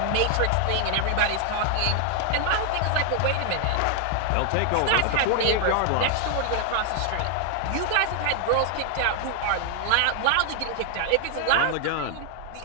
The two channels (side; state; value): both; different; correlation 0.00